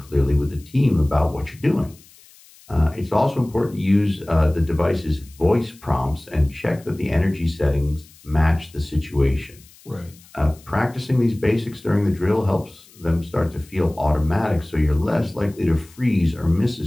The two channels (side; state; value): left; noise; hiss, 25 dB below the sound